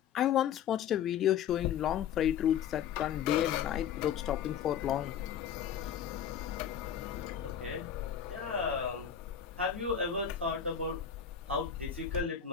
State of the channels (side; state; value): right; quieter; 8.7 dB